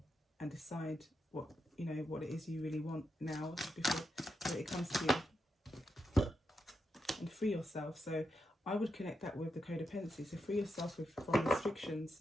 and decide what, you know, what it is you really want now before it comes to you, and free yourself. So I would connect that with the codependency. So free yourself from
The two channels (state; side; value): normal; both; correlation 0.85